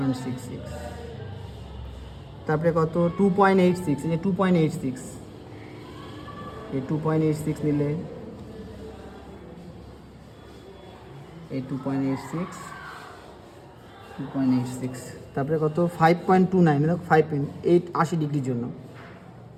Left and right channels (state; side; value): identical; both; correlation 1.00